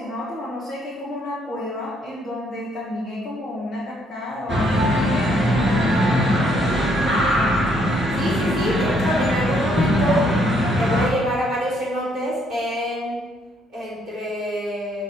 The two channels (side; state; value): both; normal; correlation 0.69